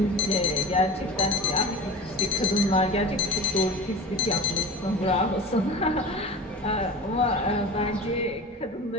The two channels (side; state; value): both; normal; correlation 0.33